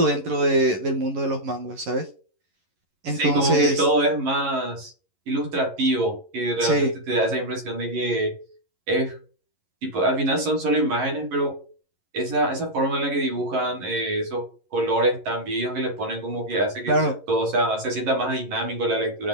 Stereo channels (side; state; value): left; late; 11 ms